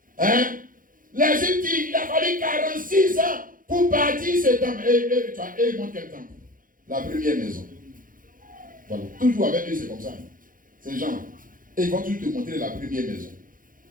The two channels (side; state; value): left; late; 0.40 ms